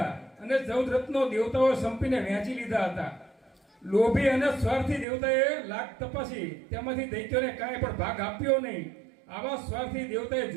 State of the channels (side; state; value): left; drops out; at 5.1 s